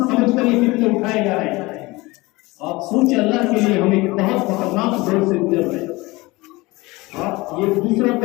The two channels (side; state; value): right; quieter; 22.1 dB